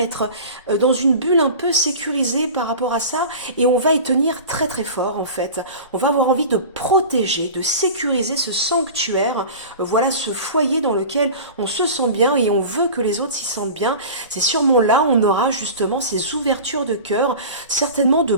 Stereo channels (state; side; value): inverted; both; correlation -0.35